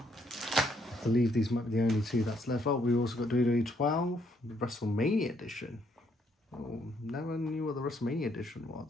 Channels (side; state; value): both; normal; correlation 0.71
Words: I believe these might be the only 2 that's left. Oh, we also got WWE 12, the WrestleMania edition. Oh, never knew what the WrestleMania edition